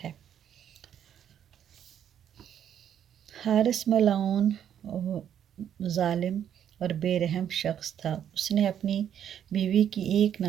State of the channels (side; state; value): left; quieter; 9.5 dB